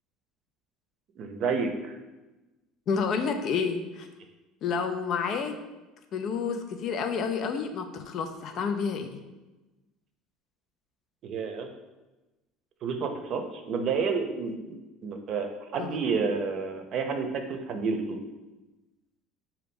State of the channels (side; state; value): both; normal; correlation 0.45